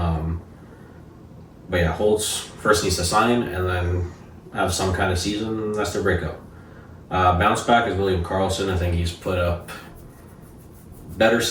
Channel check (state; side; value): identical; both; correlation 1.00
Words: But yeah, Holtz first needs to sign and then have some kind of season. That's their breakout. Bounce back is William Karlsson. I think he's put up better